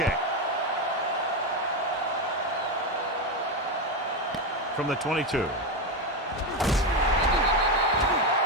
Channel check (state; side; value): normal; both; correlation 0.11